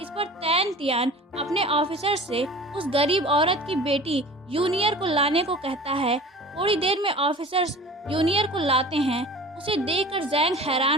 पर तैन तियांग अपने ऑफिसर से उस गरीब औरत की बेटी यूनियर को लाने को कहता है। थोड़ी देर में ऑफिसर्स यूनियर को लाते हैं। उसे देखकर जैंग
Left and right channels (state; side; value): normal; both; correlation 0.41